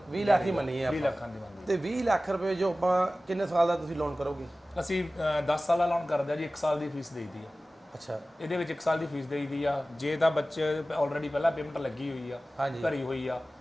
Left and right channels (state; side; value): normal; both; correlation 0.96